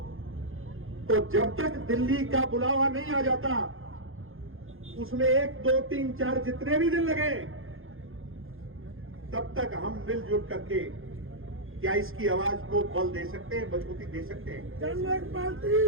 तो जब तक दिल्ली का बुलावा नहीं आ जाता, उसमें 1, 2, 3, 4 जितने भी दिन लगे, तब तक हम मिलजुल करके क्या इसकी आवाज को बल दे सकते हैं, मजबूती दे सकते हैं।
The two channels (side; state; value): left; late; 0.60 ms